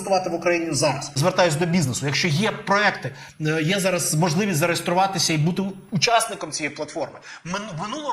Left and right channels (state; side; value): identical; both; correlation 1.00